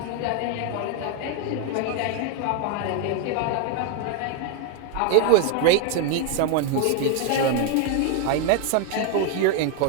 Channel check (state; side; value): different; both; correlation 0.01